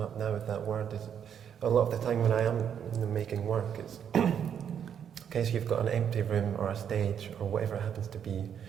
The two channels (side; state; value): left; quieter; 8.4 dB